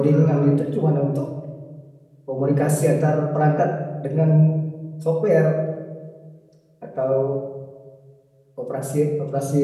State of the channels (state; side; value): identical; both; correlation 1.00